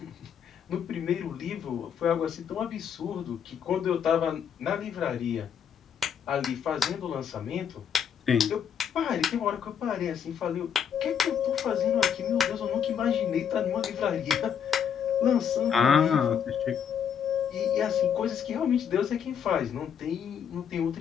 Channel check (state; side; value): quieter; right; 8.0 dB